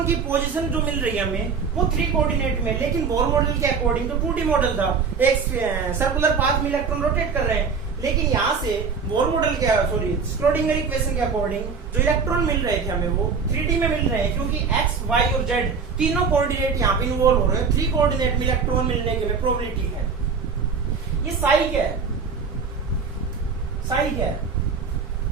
की पोजीशन जो मिल रही है हमें वो 3 कोऑर्डिनेट में, लेकिन बोर मॉडल के अकॉर्डिंग तो 2D मॉडल था, एक सर्कुलर पाथ में इलेक्ट्रॉन रोटेट कर रहे हैं। लेकिन यहाँ से बोर मॉडल के स्क्रोडिंगर इक्वेशन के अकॉर्डिंग जो इलेक्ट्रॉन मिल रहे थे हमें वो 3D में मिल रहे हैं, क्योंकि एक्स वाई और जेड तीनों कोऑर्डिनेट यहाँ पे इन्वॉल्व हो रहे हैं। 3 कोऑर्डिनेट में इलेक्ट्रॉन मिलने की प्रोबेबिलिटी है। ये साई क्या है, साई क्या है?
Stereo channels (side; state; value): left; quieter; 5.5 dB